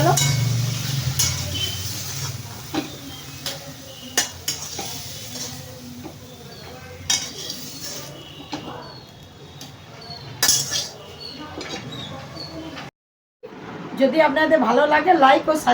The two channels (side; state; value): both; identical; correlation 1.00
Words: যদি আপনাদের ভালো লাগে লাইক ও